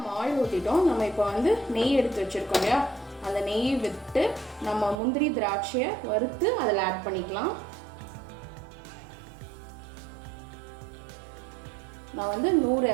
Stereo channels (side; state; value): left; drops out; at 5.0 s